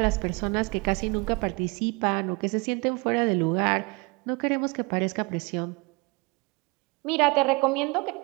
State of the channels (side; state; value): left; quieter; 28.3 dB